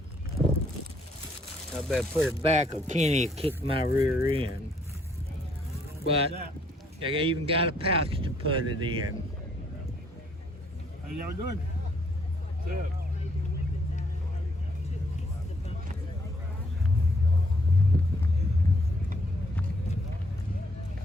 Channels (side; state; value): both; normal; correlation 0.68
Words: I better put it back or Kenny will kick my rear end. But they even got a pouch to put it in. How y'all doing? What's up?